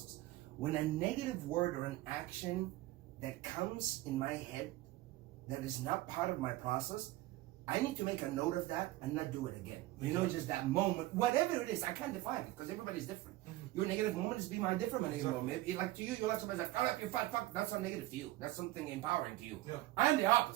When a negative word or an action that comes in my head that is not part of my process, I need to make a note of that and not do it again. You know, just that moment, whatever it is, I can't define it because everybody's different. Your negative moment is be my different negative moment. Maybe like to you, you'll have somebody say, "Shut up, you fat fuck." That's not negative to you. That's something empowering to you. Yeah. I'm the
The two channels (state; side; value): quieter; left; 17.5 dB